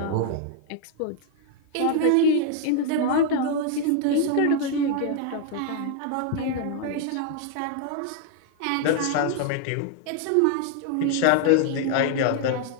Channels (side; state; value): both; different; correlation 0.00